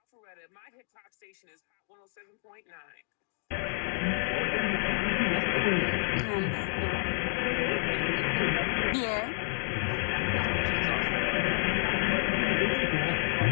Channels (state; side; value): silent; right; 58 dB below the other